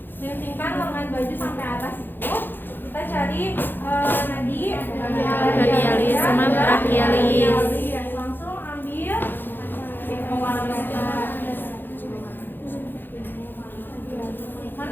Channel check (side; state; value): right; late; 0.096 ms